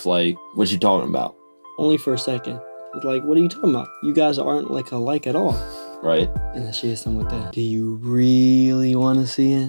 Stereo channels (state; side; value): inverted; both; correlation -1.00